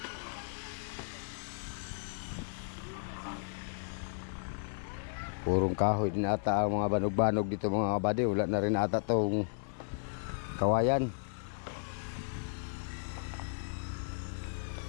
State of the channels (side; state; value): right; silent; digital silence